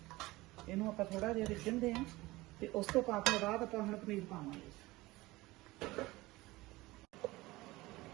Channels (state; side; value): quieter; left; 20.0 dB